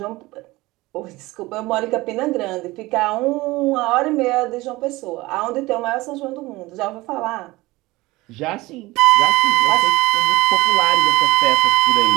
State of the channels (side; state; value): left; quieter; 20.5 dB